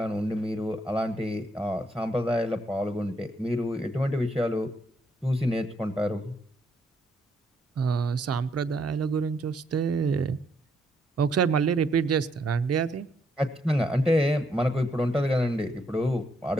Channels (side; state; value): both; normal; correlation 0.74